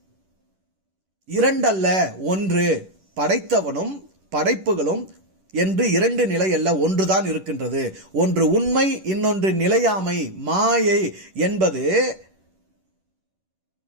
2 அல்ல 1, படைத்தவனும் படைப்புகளும் என்று 2 நிலை அல்ல, ஒன்றுதான் இருக்கின்றது. ஒன்று உண்மை, இன்னொன்று நிலையாமை, மாயை என்பது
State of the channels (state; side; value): late; left; 10 ms